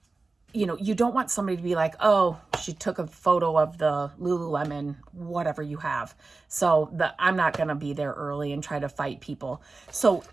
you don't want somebody to be like, oh, she took a photo of the Lululemon, whatever you have. So I'm not going to be there early and try to fight people. So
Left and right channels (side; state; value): left; quieter; 3.7 dB